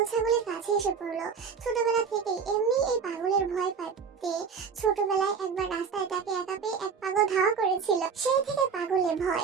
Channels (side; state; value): left; quieter; 6.0 dB